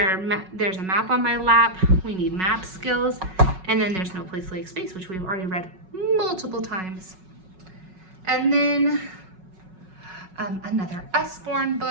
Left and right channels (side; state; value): left; late; 5.4 ms